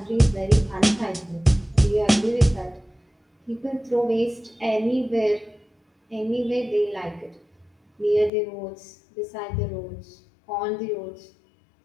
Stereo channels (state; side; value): drops out; right; at 8.3 s